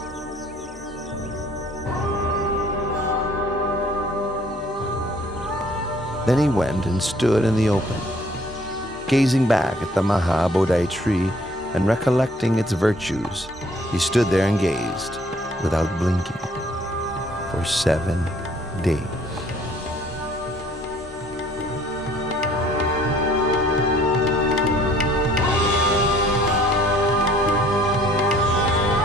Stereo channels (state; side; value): normal; both; correlation 0.58